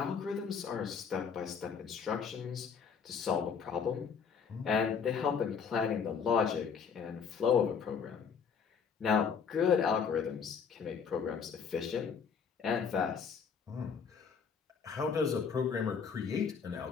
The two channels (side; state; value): right; quieter; 6.3 dB